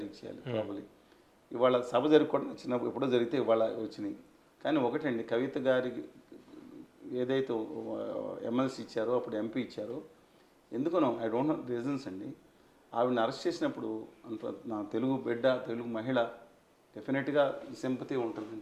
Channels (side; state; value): both; identical; correlation 1.00